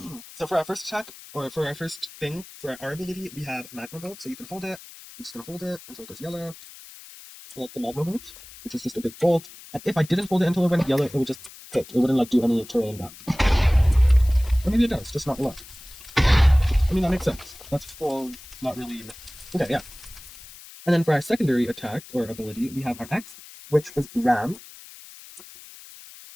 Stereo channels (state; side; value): noise; left; hiss, 18 dB below the sound